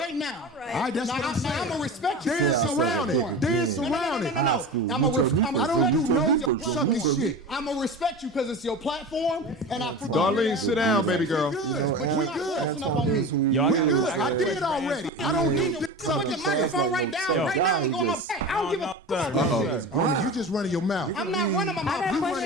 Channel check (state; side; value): normal; both; correlation 0.31